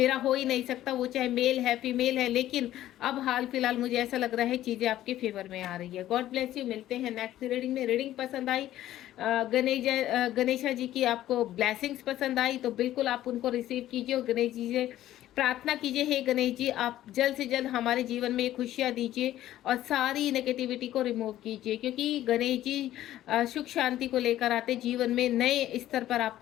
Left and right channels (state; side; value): quieter; right; 13.5 dB